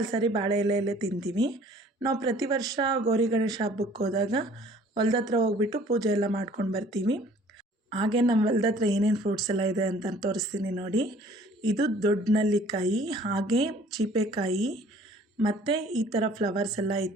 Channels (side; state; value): both; normal; correlation 0.54